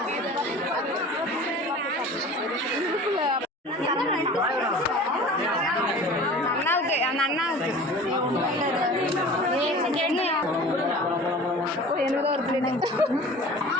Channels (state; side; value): normal; both; correlation 0.41